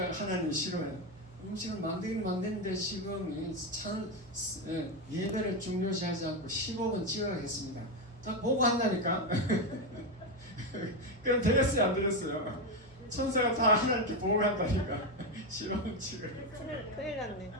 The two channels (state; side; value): normal; both; correlation 0.10